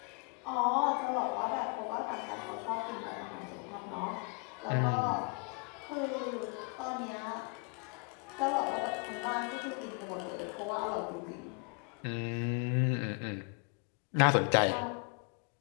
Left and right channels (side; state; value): right; quieter; 35.0 dB